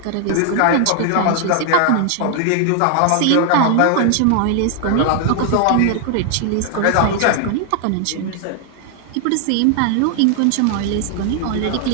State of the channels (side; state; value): both; different; correlation 0.00